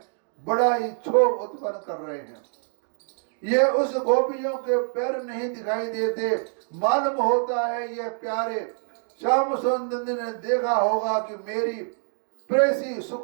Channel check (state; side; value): silent; left; 61 dB below the other